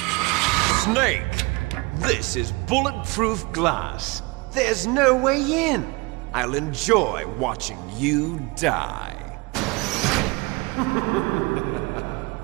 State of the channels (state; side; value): quieter; left; 25.4 dB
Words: Snake! This is bulletproof glass. There's no way in. I'll enjoy watching you die.